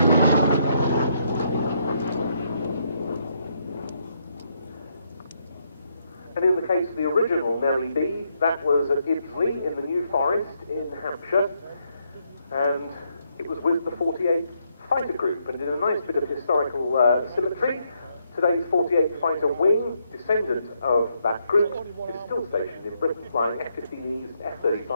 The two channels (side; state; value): both; inverted; correlation -0.76